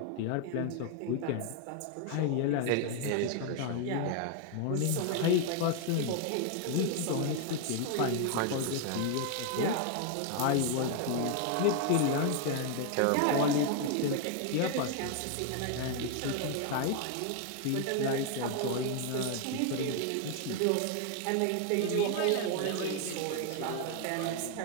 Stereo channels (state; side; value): different; both; correlation 0.01